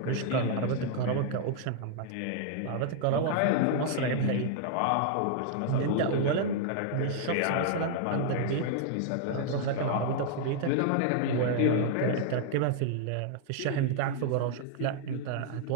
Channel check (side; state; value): both; different; correlation -0.01